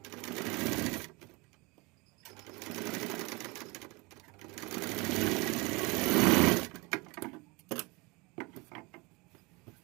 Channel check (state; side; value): quieter; left; 26.3 dB